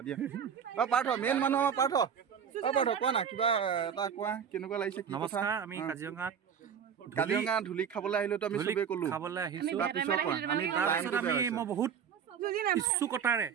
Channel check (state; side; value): quieter; left; 7.6 dB